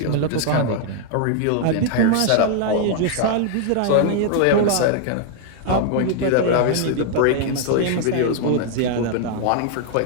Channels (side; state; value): both; different; correlation 0.00